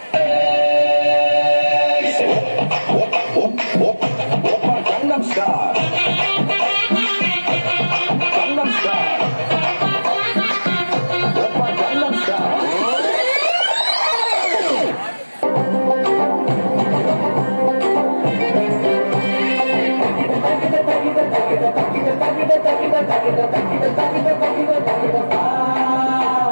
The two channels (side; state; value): both; inverted; correlation -1.00